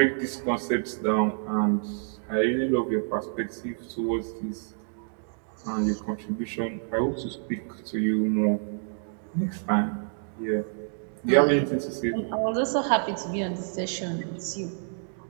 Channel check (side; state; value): left; silent; digital silence